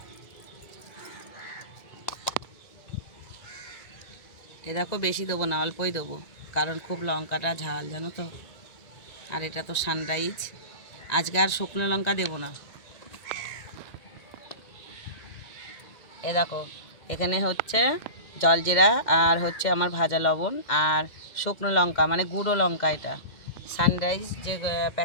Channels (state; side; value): late; right; 2.1 ms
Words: এ দেখো বেশি দেবো না, অল্পই দেবো, কারণ খুব লঙ্কাটা ঝাল জানো তো। আর এটা তো সানরাইজ, আজকে আর শুকনো লঙ্কা দেবো না। এ দেখো এখানে হচ্ছে জলজিরা, আর হচ্ছে আমার ভাজা লবণ, আর শুকনো লঙ্কা মানে গুঁড়ো লঙ্কা, এটা সানরাইজ যে